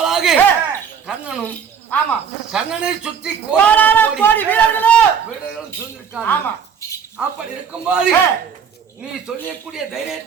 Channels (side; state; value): left; quieter; 7.2 dB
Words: கர்ணனும் கர்ணனை சுற்றி கோடி வீரர்களும் சூழ்ந்திருக்காங்க. அப்படி இருக்கும்போது நீ சொல்லக்கூடிய